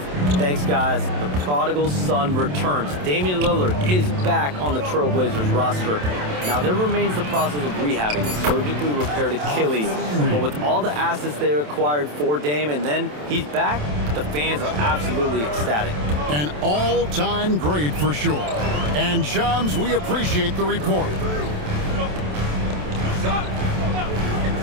Thanks, guys. The prodigal son returns. Damian Lillard is back on the Trailblazers roster. Now, there remains the process of rehabbing a surgically repaired Achilles, but with all the assets they acquired for Dame, and then he's back, the fans are absolutely ecstatic. An all-time great for sure. And Shams, we appreciate the report.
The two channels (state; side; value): late; left; 27 ms